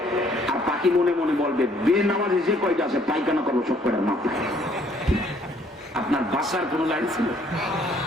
আর পাখি মনে মনে বলবে বেনামাজি যে কয়টা আছে পায়খানা করবো সব কয়টার মাথায়। আপনার বাসার কোন লাইন ছিল?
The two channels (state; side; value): normal; both; correlation 0.63